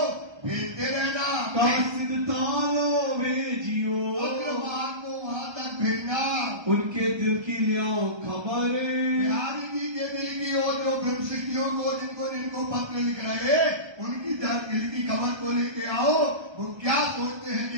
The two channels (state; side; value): late; left; 1.3 ms